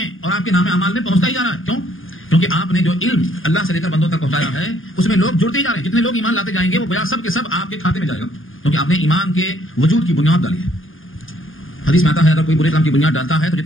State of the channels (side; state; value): right; late; 0.59 ms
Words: اور آپ کے نام اعمال میں پہنچتا ہی جا رہا ہے. کیوں؟ کیونکہ آپ نے جو علم اللہ سے لے کر بندوں تک پہنچایا ہے اس میں لوگ جڑتے ہی جا رہے ہیں. جتنے لوگ ایمان لاتے جائیں گے وہ گویا سب کے سب آپ کے کھاتے میں جائے گا، کیونکہ آپ نے ایمان کے وجود کی بنیاد ڈالی ہے. حدیث میں آتا ہے اگر کوئی برے کام کی بنیاد ڈالتا ہے تو